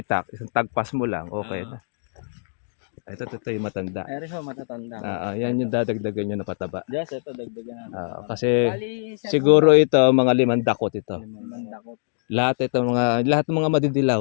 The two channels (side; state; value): right; silent; digital silence